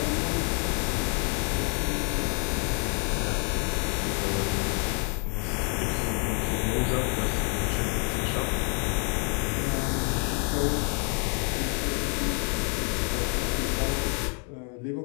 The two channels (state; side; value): quieter; right; 37.6 dB